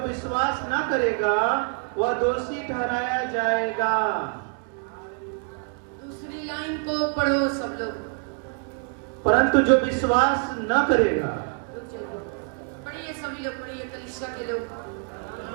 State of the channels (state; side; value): quieter; left; 39.8 dB